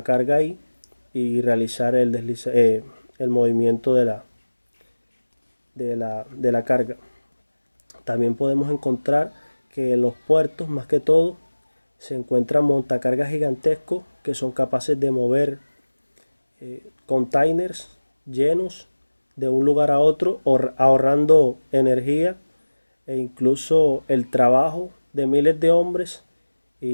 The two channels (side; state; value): both; inverted; correlation -1.00